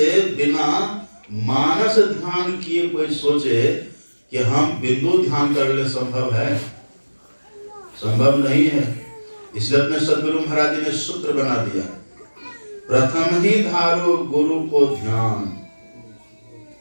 बिना मानस ध्यान किए कोई सोचे कि हम बिंदु ध्यान कर ले, संभव है? संभव नहीं है। इसलिए अपने सदगुरु महाराज जी ने सूत्र बना दिया, प्रथम ही धारो गुरु को ध्यान।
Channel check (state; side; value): inverted; both; correlation -1.00